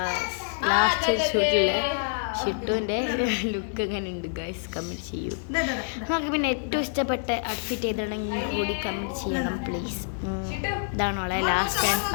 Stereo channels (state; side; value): silent; right; digital silence